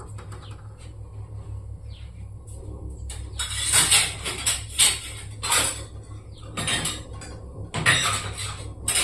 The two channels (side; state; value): both; identical; correlation 1.00